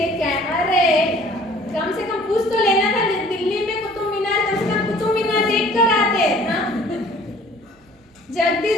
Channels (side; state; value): both; normal; correlation 0.52